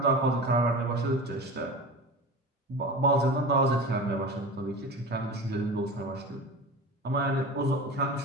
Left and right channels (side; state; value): both; normal; correlation 0.31